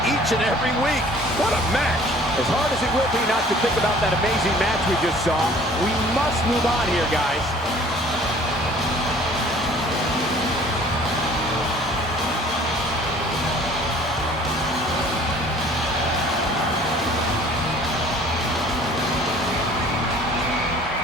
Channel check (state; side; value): normal; both; correlation 0.52